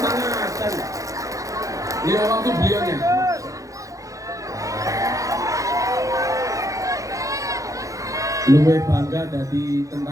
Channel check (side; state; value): left; late; 0.16 ms